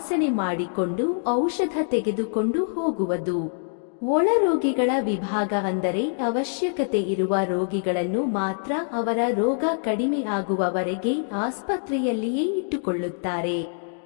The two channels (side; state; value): right; silent; digital silence